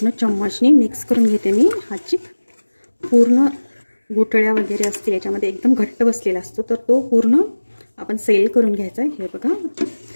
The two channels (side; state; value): both; inverted; correlation -1.00